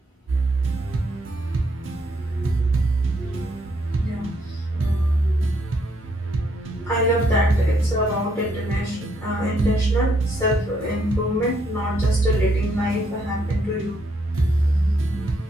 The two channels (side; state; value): both; normal; correlation 0.73